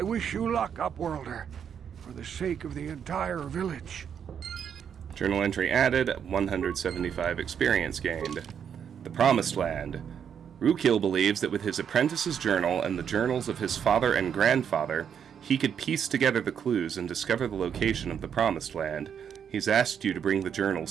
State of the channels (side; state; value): left; quieter; 7.9 dB